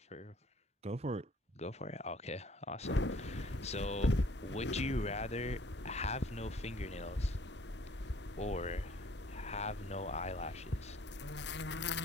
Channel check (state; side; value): normal; both; correlation 0.57